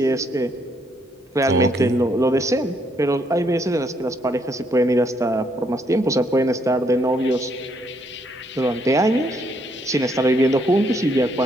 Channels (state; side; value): normal; both; correlation 0.72